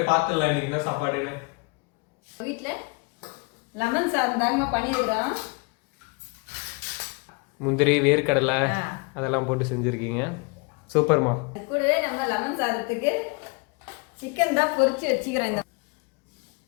பார்த்துடலாம் இன்னைக்கு என்ன சாப்பாடுன்னு. வீட்டில் லெமன் சாதம் தாங்கம்மா பண்ணியிருக்கிறோம். முந்திரி, வேர்க்கடலை அதெல்லாம் போட்டு செஞ்சுருக்கீங்க. சூப்பர்மா. கூடவே நம்ம லெமன் சாதத்துக்கு சிக்கன் தான் பொரிச்சு வச்சுக்கிறோம்.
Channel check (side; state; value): right; quieter; 30.3 dB